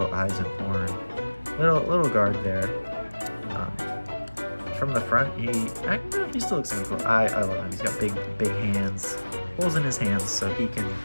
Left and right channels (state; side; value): inverted; both; correlation -1.00